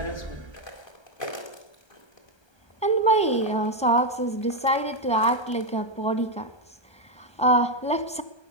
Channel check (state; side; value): late; right; 1.3 ms